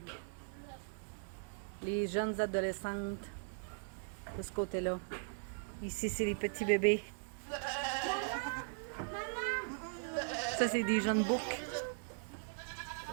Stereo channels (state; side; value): silent; left; 52 dB below the other